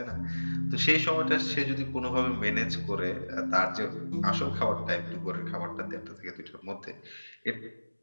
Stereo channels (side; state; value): both; inverted; correlation -1.00